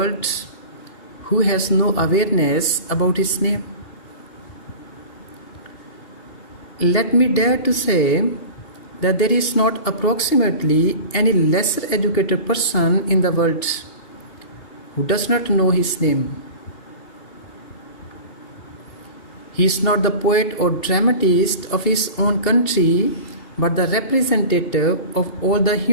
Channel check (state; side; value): late; right; 2.7 ms